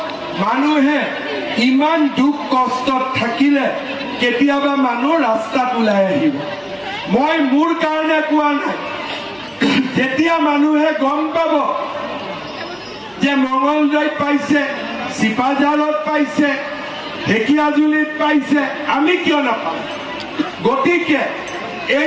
মানুহে ইমান দুখ কষ্টত থাকিলে কেতিয়াবা মানুহ ৰাস্তাত ওলাই আহিব মই মোৰ কাৰণে কোৱা নাই যেতিয়া মানুহে গম পাব যে মঙলদৈত পাইছে চিপাঝাৰত পাইছে ঢেকিয়াজুলিত পাইছে আমি কিয় নাপাম গতিকে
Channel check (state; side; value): identical; both; correlation 1.00